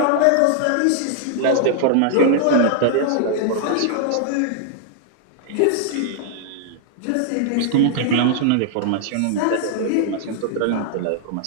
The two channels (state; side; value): different; both; correlation -0.01